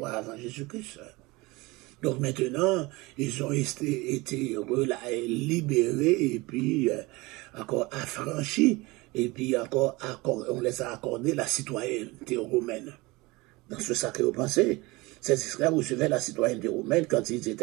avant Jésus-Christ. Donc maintenant, ils ont été libérés et puis encore affranchis et puis encore on les a accordé la citoyenneté romaine. Dans ce sacré pensée, ces esclaves recevaient la citoyenneté romaine quand ils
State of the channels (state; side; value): quieter; left; 22.9 dB